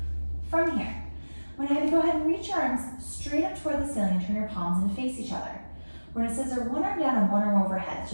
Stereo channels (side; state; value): both; inverted; correlation -1.00